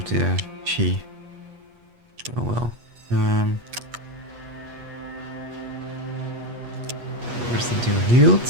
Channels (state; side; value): late; left; 8.3 ms